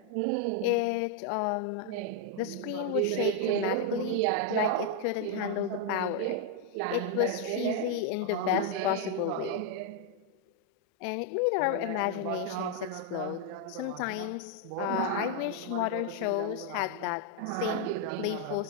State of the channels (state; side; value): different; both; correlation 0.01